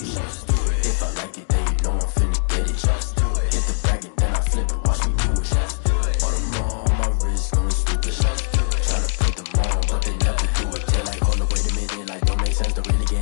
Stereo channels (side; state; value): right; silent; digital silence